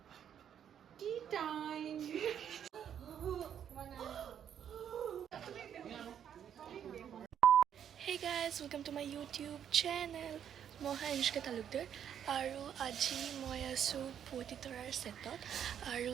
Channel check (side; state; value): left; quieter; 9.1 dB